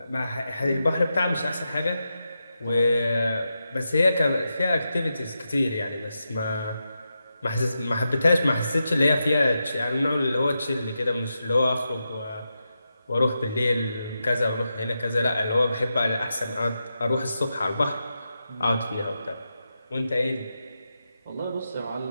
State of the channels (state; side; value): inverted; both; correlation -0.88